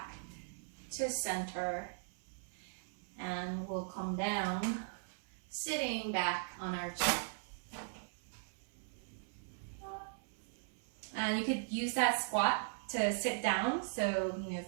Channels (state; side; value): silent; left; 52 dB below the other